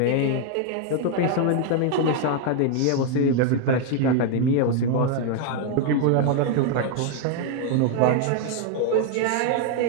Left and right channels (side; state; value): both; different; correlation 0.00